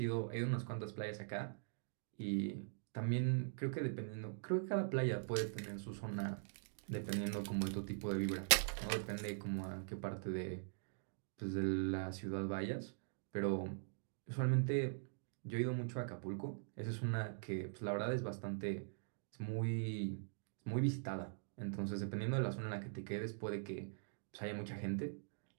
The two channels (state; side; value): silent; left; digital silence